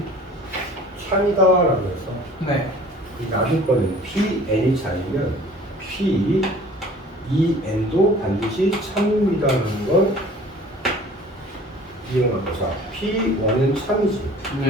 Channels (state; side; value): normal; both; correlation 0.48